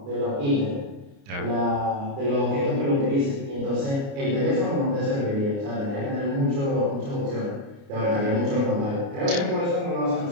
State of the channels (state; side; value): late; left; 29 ms